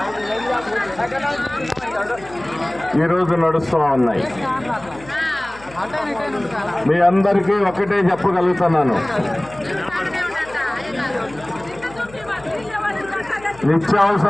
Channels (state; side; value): noise; left; hum, 21 dB below the sound